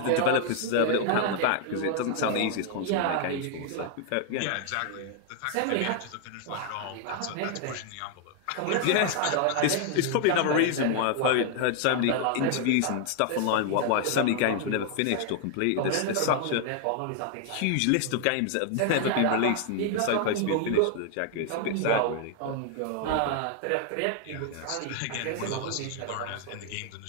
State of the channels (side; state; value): both; different; correlation 0.00